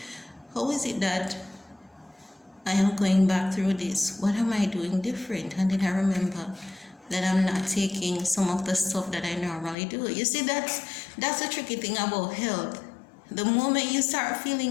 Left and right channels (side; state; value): right; drops out; at 9.8 s